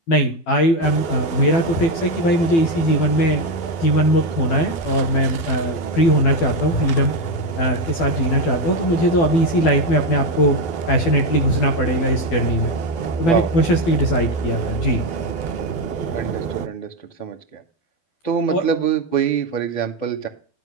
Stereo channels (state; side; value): late; right; 12 ms